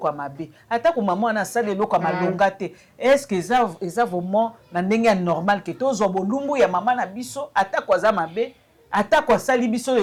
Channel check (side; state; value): both; identical; correlation 1.00